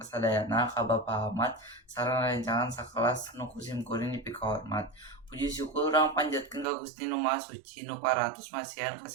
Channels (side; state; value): left; drops out; at 6.7 s